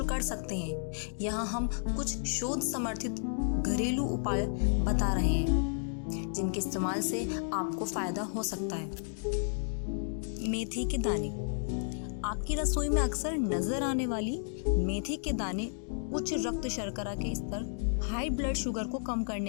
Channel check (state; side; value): silent; right; digital silence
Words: कर सकते हैं। यहाँ हम कुछ शोध समर्थित घरेलू उपाय बता रहे हैं जिनके इस्तेमाल से आपको फायदा हो सकता है। मेथी के दाने। आपकी रसोई में अक्सर नजर आने वाली मेथी के दाने उच्च रक्त शर्करा के स्तर, हाई ब्लड शुगर को कम